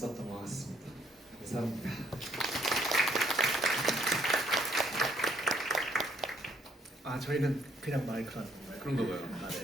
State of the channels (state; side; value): normal; both; correlation 0.68